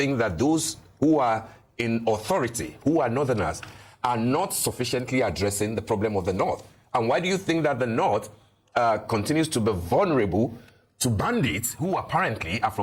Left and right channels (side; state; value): both; identical; correlation 1.00